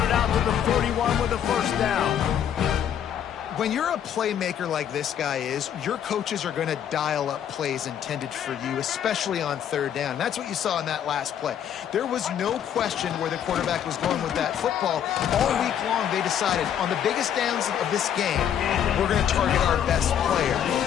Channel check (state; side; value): quieter; right; 9.4 dB